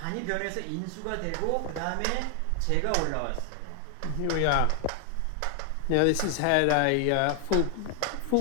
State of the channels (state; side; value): different; both; correlation 0.00